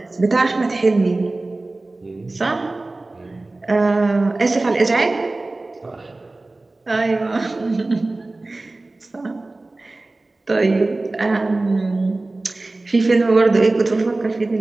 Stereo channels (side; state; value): left; quieter; 3.0 dB